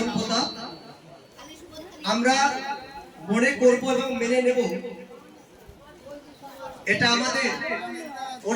পোতা। আমরা মনে করব এবং মেনে নেব এটা আমাদের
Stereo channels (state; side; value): identical; both; correlation 1.00